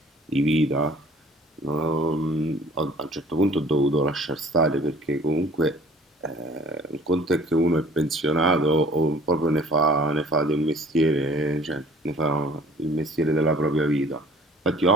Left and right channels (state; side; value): normal; both; correlation 0.50